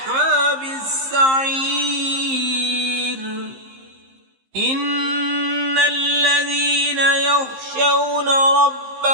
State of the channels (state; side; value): late; left; 15 ms